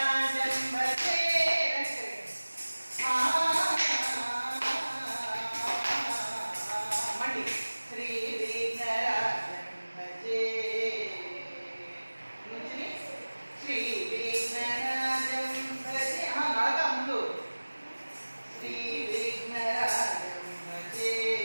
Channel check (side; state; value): both; inverted; correlation -1.00